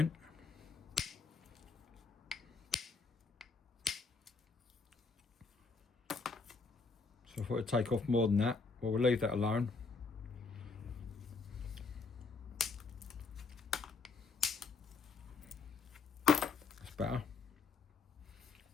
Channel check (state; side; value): quieter; right; 4.5 dB